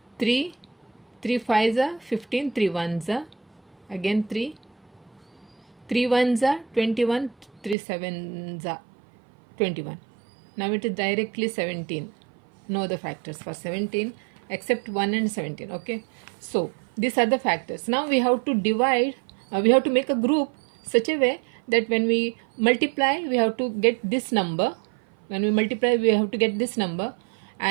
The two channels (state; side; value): drops out; left; at 7.8 s